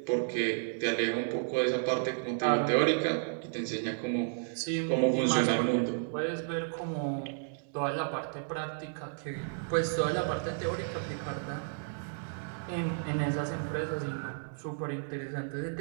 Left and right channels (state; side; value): silent; left; 56 dB below the other